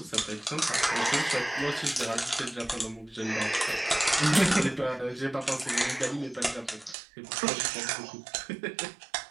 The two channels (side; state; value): left; drops out; at 7.0 s